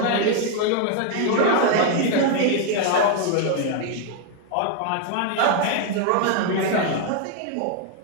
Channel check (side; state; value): both; different; correlation 0.00